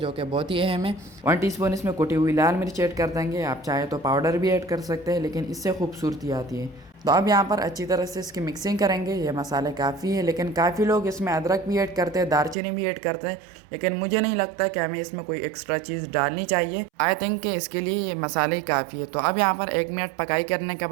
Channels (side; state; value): left; drops out; at 12.6 s